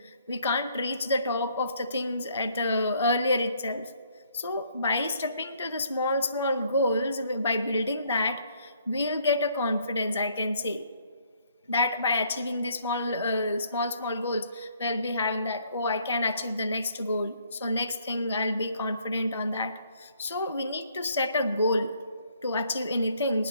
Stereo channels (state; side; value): inverted; both; correlation -0.66